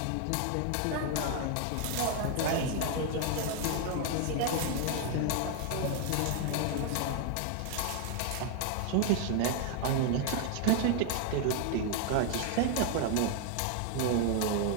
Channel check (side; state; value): both; different; correlation 0.00